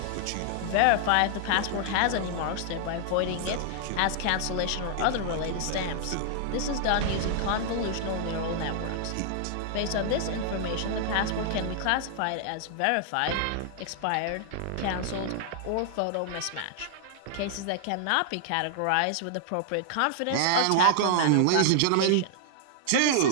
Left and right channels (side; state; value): both; different; correlation -0.01